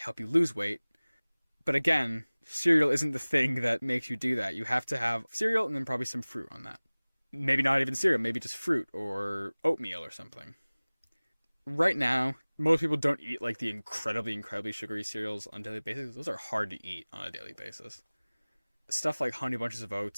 you lose weight. But again, cereal isn't the thing that makes you do that. You have to have cereal and then probably some fruit on that. Maybe not even cereal, maybe just fruit or oatmeal or something. Right now, most people don't eat the incredibly sugary cereals on a daily basis. Those are hard to eat on a daily basis. Stuff like Honey Bunches of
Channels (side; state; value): both; inverted; correlation -1.00